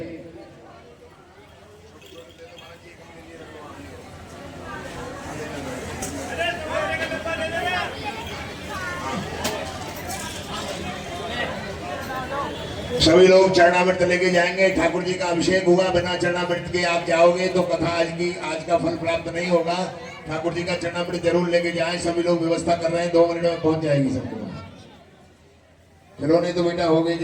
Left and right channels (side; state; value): both; identical; correlation 1.00